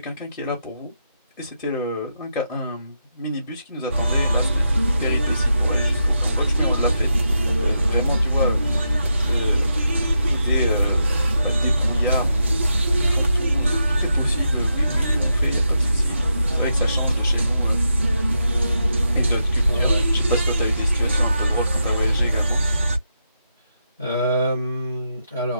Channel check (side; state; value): both; inverted; correlation -0.85